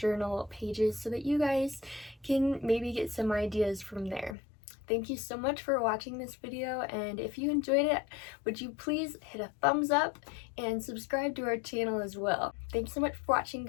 pages so that you guys can maybe get some ideas from there. Thank you so much for watching this video, and if you enjoyed it, would you please hit a thumbs up and subscribe to our channel as well. Thanks so much for watching,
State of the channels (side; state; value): right; drops out; at 4.4 s